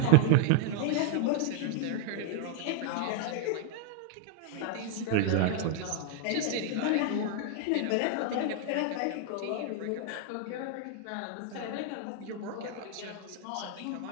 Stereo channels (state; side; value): different; both; correlation 0.00